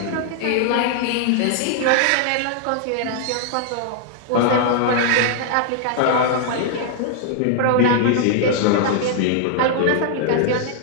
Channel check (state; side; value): different; both; correlation 0.00